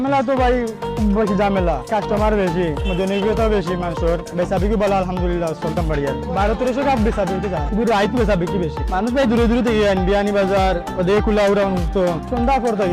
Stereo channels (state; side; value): identical; both; correlation 1.00